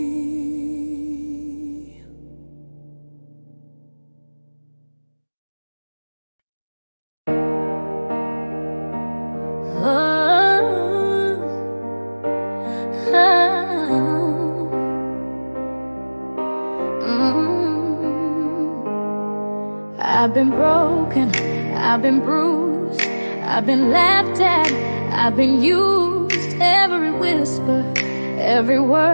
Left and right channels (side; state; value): both; inverted; correlation -1.00